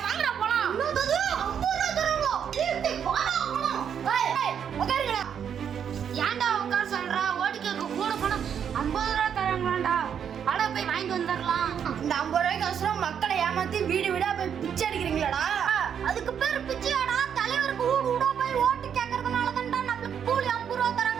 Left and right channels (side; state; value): left; quieter; 8.1 dB